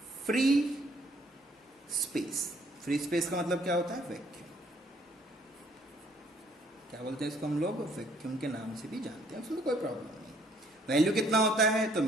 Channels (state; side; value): normal; both; correlation 0.64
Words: free space. Free space का मतलब क्या होता है? वैक्यूम। क्या बोलते हैं इसको हम लोग? वैक्यूम के नाम से भी जानते हैं, उसमें कोई प्रॉब्लम नहीं। वैल्यू कितना होता है? तो